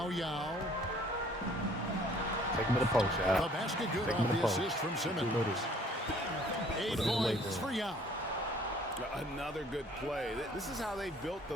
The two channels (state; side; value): normal; both; correlation 0.57